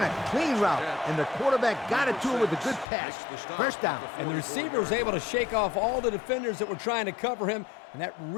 a clean route, and the quarterback got it to him with a good pass. First down. And the receiver was able to shake off all the defenders that were trying to cover him, and that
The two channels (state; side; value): drops out; right; at 2.9 s